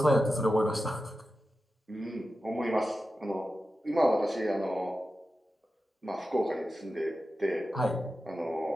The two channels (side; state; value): both; normal; correlation 0.92